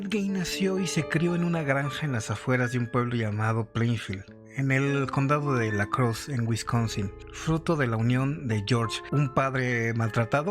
Gein nació y se crió en una granja en las afueras de un pueblo llamado Plainfield, en el condado de La Crosse, en Wisconsin, fruto de la unión de George, un padre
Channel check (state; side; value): identical; both; correlation 1.00